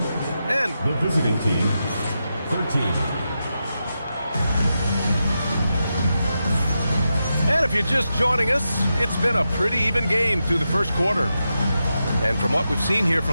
the visiting team, 13. And if you're just joining us, it's been a pretty even game through the first quarter. And from what we've seen here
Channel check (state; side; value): inverted; both; correlation -0.88